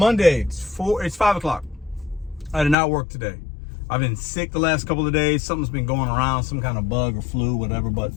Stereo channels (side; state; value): right; drops out; at 2.8 s